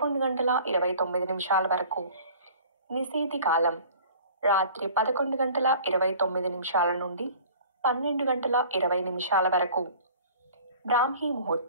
వరకు. నిశీతి కాలం రాత్రి 11:29 నుండి 12:20 వరకు. బ్రాహ్మీ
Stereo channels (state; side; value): inverted; both; correlation -0.46